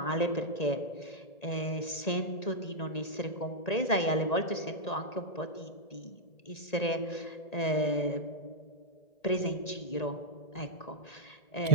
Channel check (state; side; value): late; right; 1.9 ms